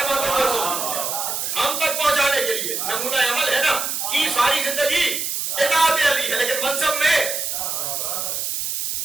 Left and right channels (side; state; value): right; noise; hiss, 2 dB below the sound